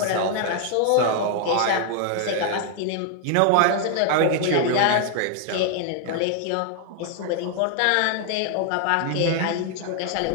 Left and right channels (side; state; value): both; different; correlation 0.00